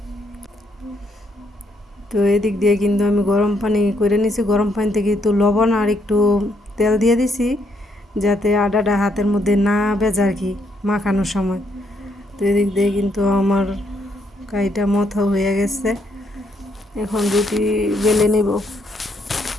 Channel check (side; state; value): both; normal; correlation 0.74